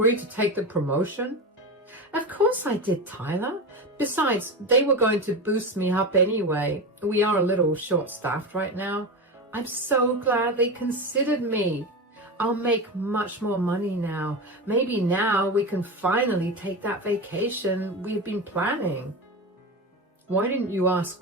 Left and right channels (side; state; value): both; normal; correlation 0.22